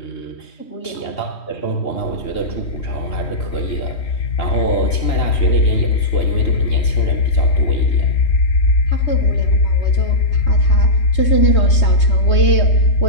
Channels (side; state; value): right; late; 3.2 ms